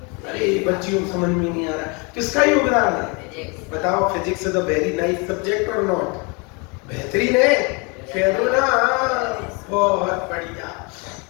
अरे बच्चियों को समझ में नहीं आ रहा, किसका योगदान है? बताओ। Physics is a very nice subject और नॉट? बेहतरीन है, कह दो ना। बहुत बढ़िया।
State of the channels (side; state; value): right; quieter; 31.2 dB